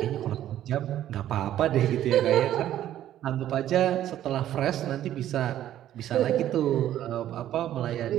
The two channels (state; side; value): quieter; left; 12.1 dB